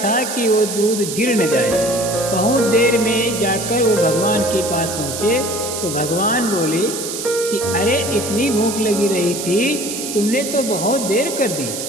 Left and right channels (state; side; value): noise; right; hiss, 6 dB below the sound